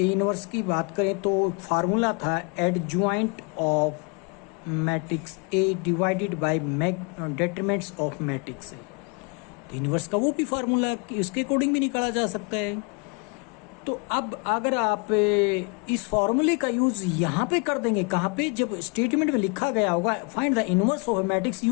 इनवर्स की बात करें तो फार्मूला था adjoint of matrix A divided by determinants of matrix. Inverse का वो भी फार्मूला इसके अकॉर्डिंग भी निकाला जा सकता है। तो अब अगर आप इस फार्मूले का यूज यहाँ पे कर देंगे, कहाँ पे, जब स्टेटमेंट में लिखा गया होगा find the inverse of matrix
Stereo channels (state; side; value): quieter; right; 33.1 dB